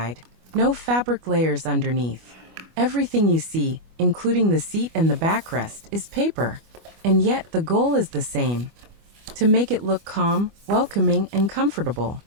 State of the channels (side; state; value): left; late; 25 ms